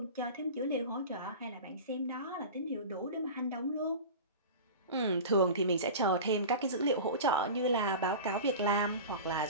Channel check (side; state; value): both; inverted; correlation -0.32